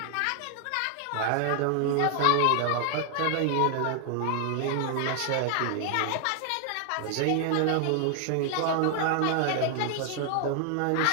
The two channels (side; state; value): both; different; correlation 0.00